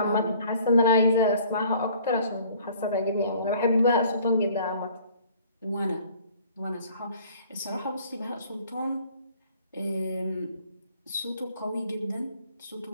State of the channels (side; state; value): both; inverted; correlation -0.54